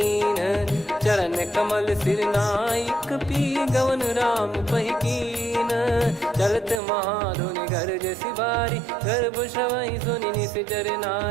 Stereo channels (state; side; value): drops out; left; at 6.8 s